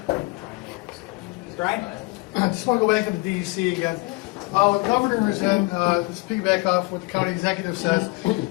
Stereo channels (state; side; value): quieter; right; 25.8 dB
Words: Brian? I just want to go back to the DEC again. The governor is in, just piggyback off what the county executive says,